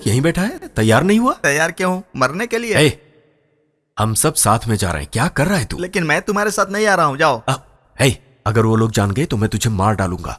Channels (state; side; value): identical; both; correlation 1.00